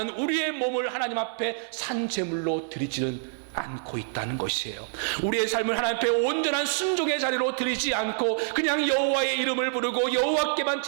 우리의 몸을 하나님 앞에 산 제물로 드리지는 않고 있다는 것이에요. 우리의 삶을 하나님 앞에 온전한 순종의 자리로 드리지 않고 그냥 여호와의 이름을 부르고 여호와께만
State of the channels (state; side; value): silent; left; 60 dB below the other